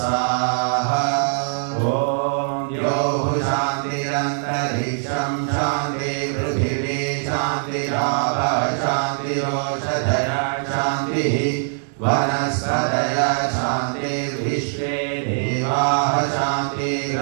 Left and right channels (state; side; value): silent; left; digital silence